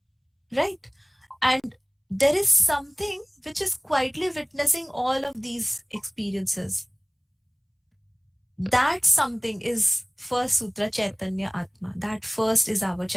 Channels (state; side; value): identical; both; correlation 1.00